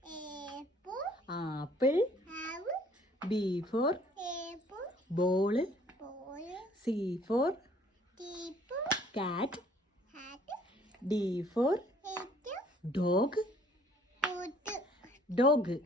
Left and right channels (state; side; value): normal; both; correlation 0.58